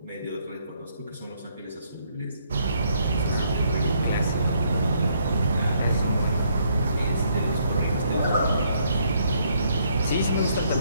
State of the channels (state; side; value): inverted; both; correlation -0.70